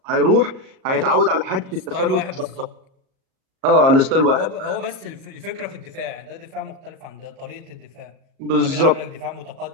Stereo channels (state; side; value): late; left; 37 ms